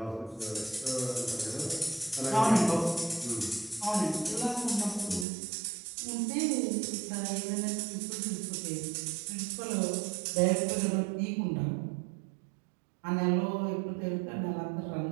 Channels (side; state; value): left; drops out; at 5.2 s